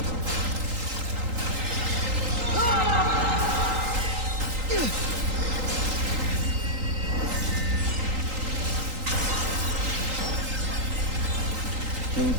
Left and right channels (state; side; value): late; left; 3.8 ms